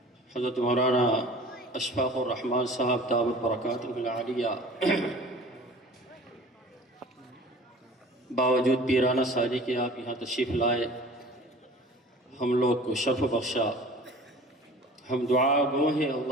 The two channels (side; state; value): both; normal; correlation 0.44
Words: حضرت مولانا اشفاق الرحمان صاحب دامت برکاتہ العالیہ، باوجود پیرانہ ساجی کے آپ یہاں تشریف لائے، ہم لوگ کو شرف بخشا۔ ہم دعا گو ہیں